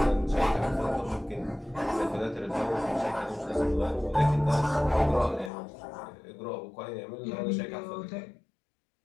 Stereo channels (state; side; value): drops out; right; at 5.5 s